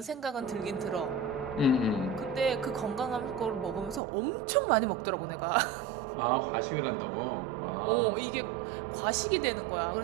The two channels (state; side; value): drops out; left; at 4.0 s